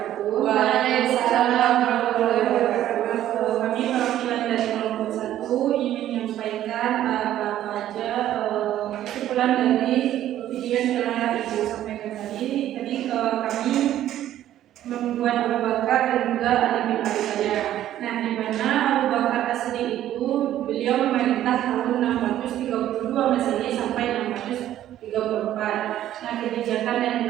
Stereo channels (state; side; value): quieter; left; 12.4 dB